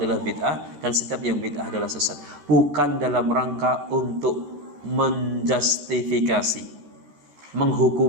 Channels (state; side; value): late; left; 14 ms